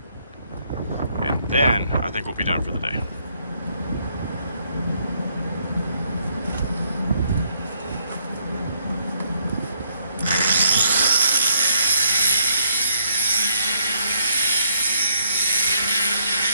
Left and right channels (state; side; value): inverted; both; correlation -0.70